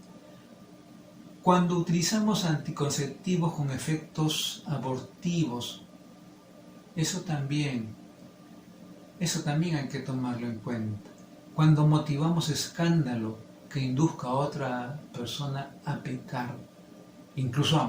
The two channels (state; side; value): identical; both; correlation 1.00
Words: Cuando utilizamos anticonceptivos con efectos abortivos, eso también hay que tomarlo en cuenta. Cuando motivamos escándalo que induzca a otra persona a pecar, incluso a